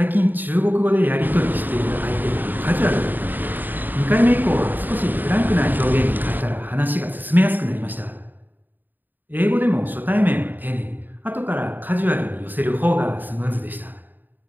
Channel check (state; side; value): late; left; 0.089 ms